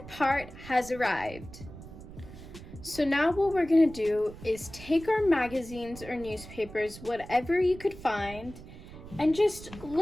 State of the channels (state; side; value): noise; right; rumble, 15 dB below the sound